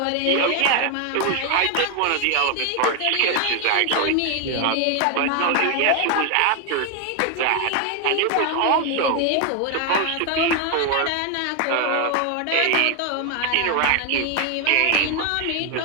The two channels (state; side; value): different; both; correlation 0.01